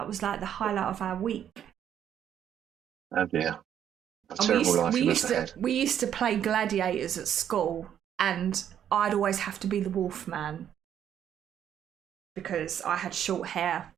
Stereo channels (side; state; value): left; quieter; 9.7 dB